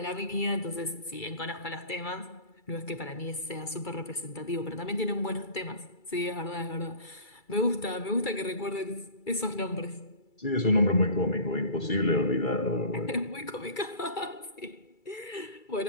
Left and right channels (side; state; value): right; late; 2.3 ms